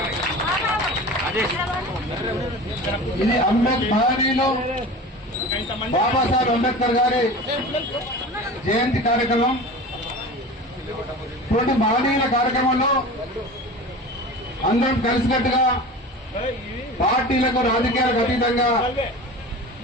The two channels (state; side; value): normal; both; correlation 0.34